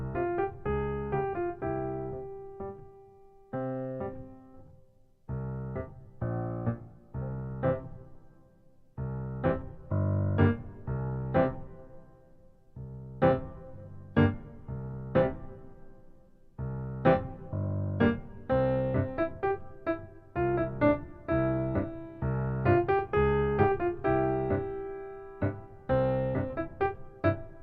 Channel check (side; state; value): both; identical; correlation 1.00